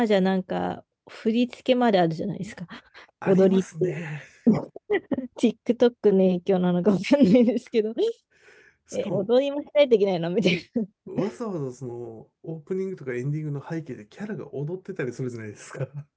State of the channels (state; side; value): identical; both; correlation 1.00